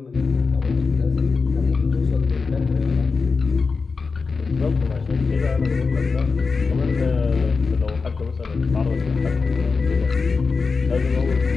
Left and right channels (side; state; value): right; quieter; 4.6 dB